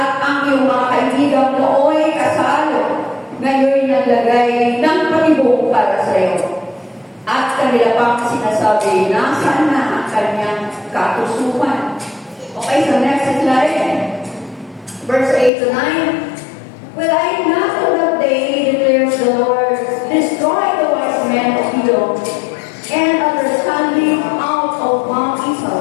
ang iyong mga kaibigan nooy kasalo. Ngayon naglagay ng patibong para sa iyo. At kanila pang sinasabi, nasaan na ang kanyang katusukan? Okay, so next slide. Verse 8 to 9. Will I not on that day, declares the Lord, destroy the wise men of Edom, and understanding out of Mount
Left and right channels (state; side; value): drops out; right; at 15.5 s